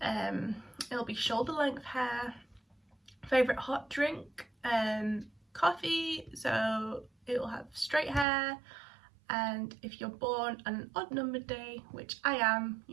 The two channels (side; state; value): left; drops out; at 8.2 s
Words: it'll be shoulder length hair. Favourite hot drink, coffee, so it'll have straight hair. And if you're born on an odd numbered day, which I am,